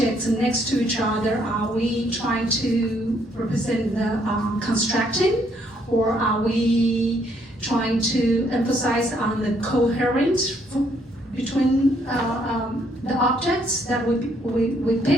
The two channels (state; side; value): normal; both; correlation 0.69